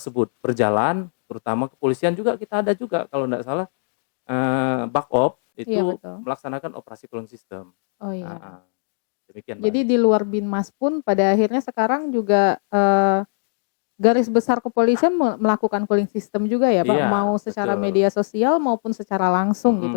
berjalan, terutama kepolisian juga kita ada juga kalau tidak salah, Bakop Iya itu betul. melaksanakan operasi cooling system. Oh iya. Heeh, demikian Mbak Jadi Anggi. di luar Binmas pun pada akhirnya sekarang juga, garis besar kepolisian melakukan cooling system juga ya, Pak? Iya, Mau secara betul. media sosial maupun secara langsung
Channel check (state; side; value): silent; right; digital silence